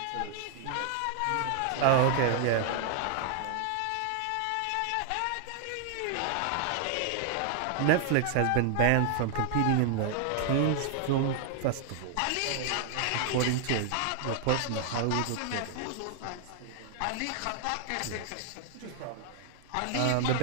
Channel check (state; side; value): different; both; correlation 0.00